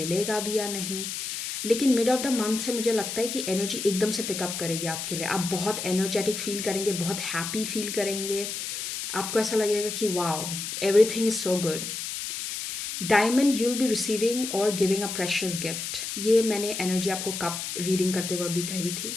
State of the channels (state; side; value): noise; left; hiss, 5 dB below the sound